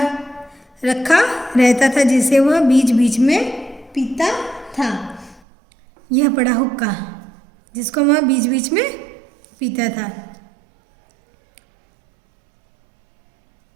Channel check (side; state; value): left; drops out; at 5.4 s